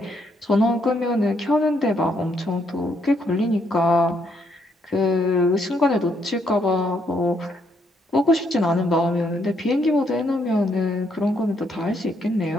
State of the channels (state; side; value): normal; both; correlation 0.73